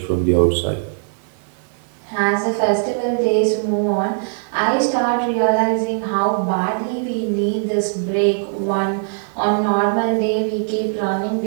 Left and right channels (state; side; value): silent; left; digital silence